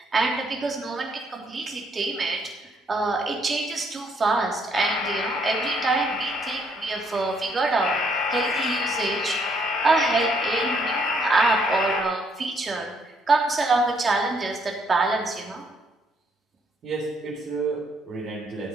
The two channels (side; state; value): both; normal; correlation 0.70